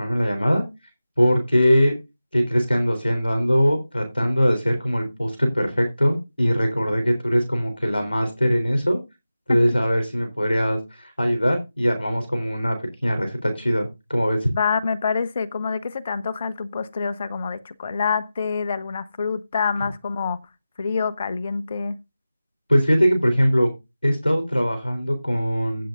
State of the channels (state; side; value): inverted; both; correlation -0.94